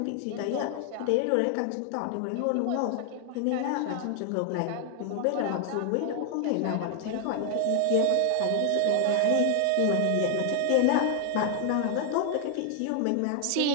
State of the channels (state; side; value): different; both; correlation 0.00